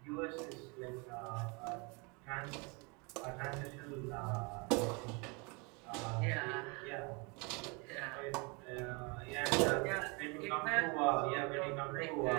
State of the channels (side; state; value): left; quieter; 30.6 dB